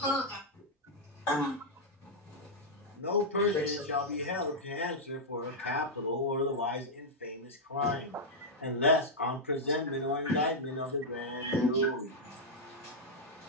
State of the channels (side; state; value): both; normal; correlation -0.05